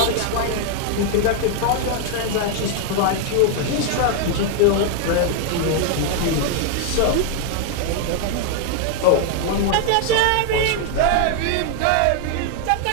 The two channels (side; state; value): both; different; correlation 0.00